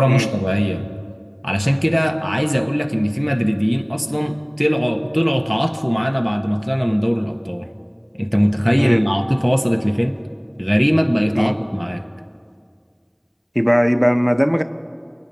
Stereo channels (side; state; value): both; identical; correlation 1.00